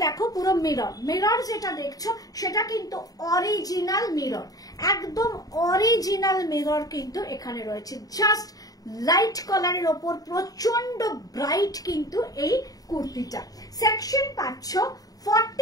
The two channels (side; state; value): right; late; 0.18 ms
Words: দেখো পুরো মিরর যেটা দেখছো সেটা কিন্তু অরিজিনাল মিরর, একদম অরিজিনাল মিরর কিন্তু এখানে রয়েছে। জাস্ট লাইট কালারের ওপর প্রচন্ড ব্রাইট কিন্তু এই কুর্তিটা। সেকশন পাচ্ছ